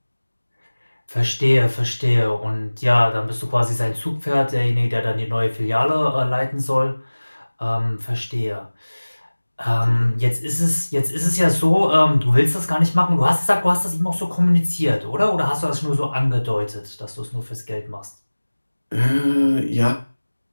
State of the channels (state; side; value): inverted; both; correlation -1.00